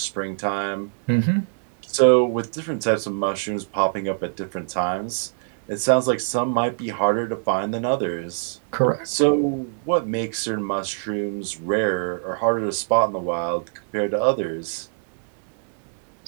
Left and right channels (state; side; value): silent; left; digital silence